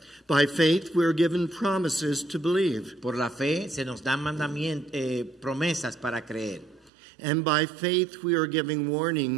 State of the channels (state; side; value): drops out; left; at 6.9 s